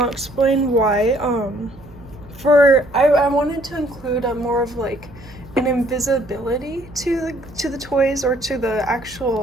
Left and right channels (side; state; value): right; noise; hum, 22 dB below the sound